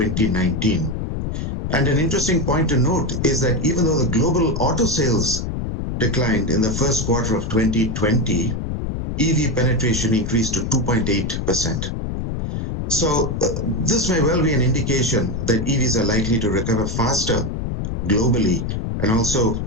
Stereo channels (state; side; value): noise; left; rumble, 3 dB below the sound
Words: And an interesting point to note is that even though the global auto sales declined in the first quarter of 2020, EV penetration increased to 2.8%. So this may well be an indication that EVs are likely to recover faster globally, and also